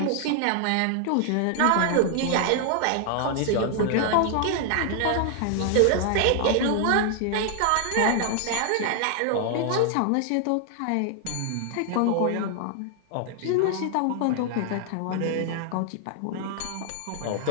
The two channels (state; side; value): different; both; correlation 0.00